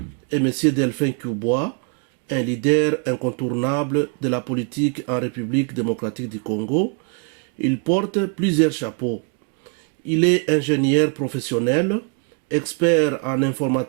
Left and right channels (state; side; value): quieter; left; 36.3 dB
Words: est Monsieur Delphin Cubois, un leader incontournable de la politique en République démocratique du Congo. Il porte plusieurs chapeaux. Il est ingénieur professionnel, expert en